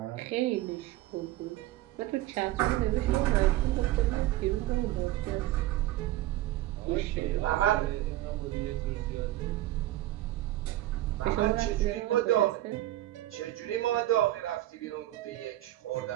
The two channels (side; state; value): left; quieter; 15.3 dB